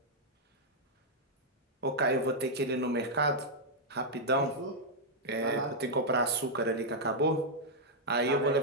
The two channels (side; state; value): both; normal; correlation -0.05